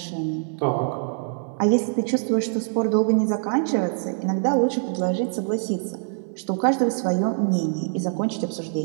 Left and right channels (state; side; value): silent; left; 63 dB below the other